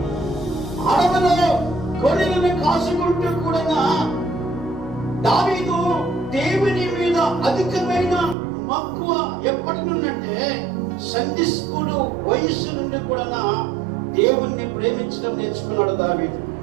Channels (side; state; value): left; drops out; at 8.3 s